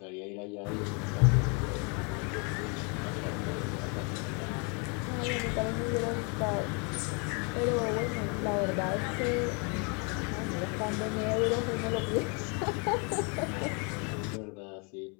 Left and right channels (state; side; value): quieter; right; 34.8 dB